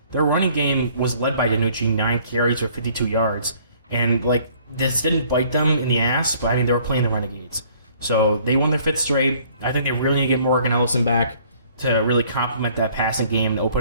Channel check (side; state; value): both; inverted; correlation -0.59